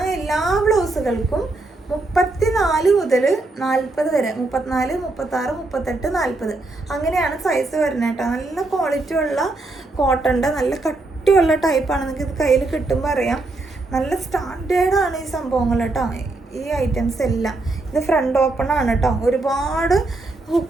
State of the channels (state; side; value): quieter; left; 3.1 dB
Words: എല്ലാ ബ്ലൗസുകൾക്കും 34 മുതൽ 40 വരെ, 34, 36, 38, 40 അങ്ങനെയാണ് സൈസ് വരുന്നത് കേട്ടോ. നല്ല ക്വാളിറ്റി ഉള്ള കോട്ടൻ്റെ നല്ല കട്ടിയുള്ള ടൈപ്പാണ്. നിങ്ങൾക്ക് ഇത് കയ്യിൽ കിട്ടുമ്പോൾ അറിയാം. നല്ല സ്റ്റാൻഡേർഡാണ് ഈ സംഭവങ്ങൾ കേട്ടോ, ഈ ഐറ്റംസ് എല്ലാം. ഇത് ഫ്രണ്ട് ഓപ്പൺ ആണ് കേട്ടോ. ഒരുപാട്